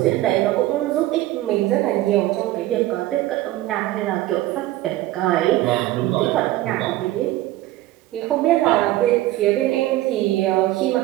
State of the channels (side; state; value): left; quieter; 16.0 dB